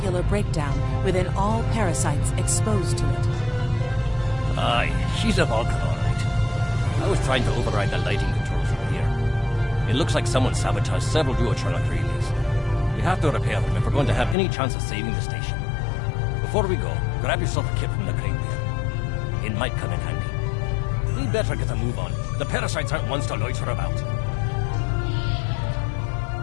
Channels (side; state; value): right; drops out; at 14.4 s